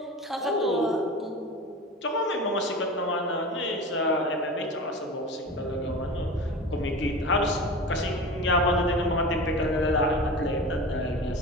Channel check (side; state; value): both; normal; correlation 0.31